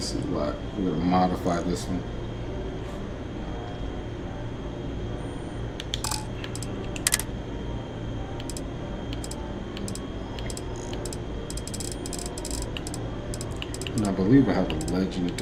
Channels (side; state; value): both; identical; correlation 1.00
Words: suit a lot. I'm gonna modify this one. And I believe I have a